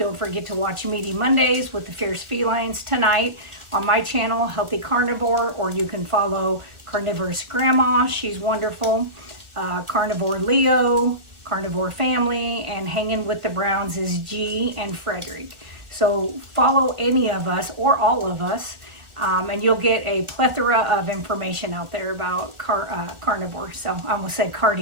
forget to watch Meaty Mondays with the Fierce Felines tonight on my channel, Healthy Carnivore, or you can follow Carnivore's Grandma. She's wonderful. Carnivore Leo, Carnivore Family, and Hanging with the Browns is G and Frederick. So follow any of us or all of us, and you'll get a plethora of information out there about carnivore. So I almost said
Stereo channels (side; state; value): left; late; 1.4 ms